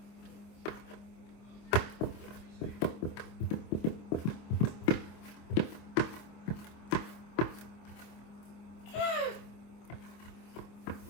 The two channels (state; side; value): late; right; 25 ms